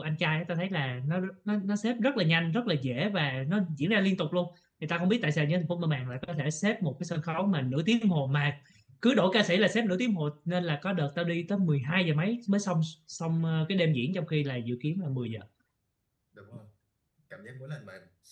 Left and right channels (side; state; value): both; identical; correlation 1.00